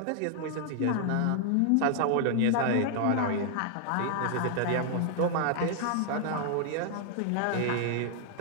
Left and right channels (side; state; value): both; different; correlation 0.00